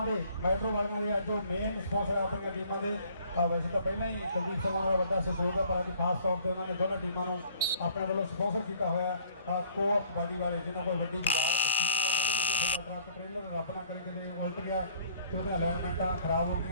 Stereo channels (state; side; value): inverted; both; correlation -0.57